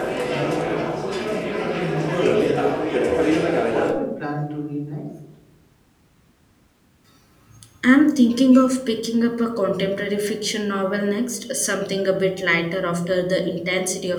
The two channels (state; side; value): identical; both; correlation 1.00